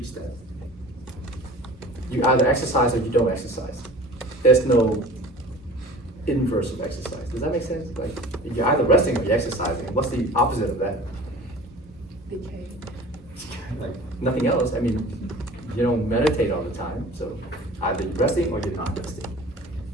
that. You either exercise or you don't exercise. There's no inverse of exercise. Does that make sense? Like, you're either resting or you're exercising. What's the opposite of that? Like, nothing else. I mean, you don't meditate all the time, so either you're resting or you're not resting.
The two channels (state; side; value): normal; both; correlation 0.43